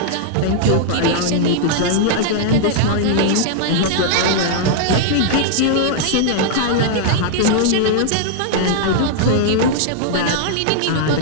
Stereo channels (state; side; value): different; both; correlation -0.01